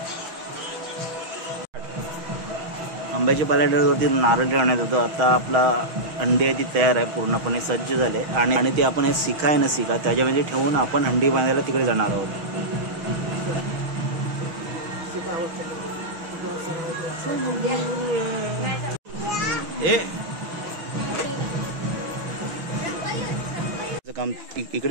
आंब्याच्या पाल्यावरती नारळ ठेवण्यात येतो. आता आपला अंड्याची तयार आहे, पूर्णपणे सज्ज झाले. आणि ते आपण शिखा आहे ना, शिखा त्याच्यामध्ये ठेवून आपण हंडी बांधायला तिकडे जाणार आहोत. काम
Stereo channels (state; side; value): late; left; 6.3 ms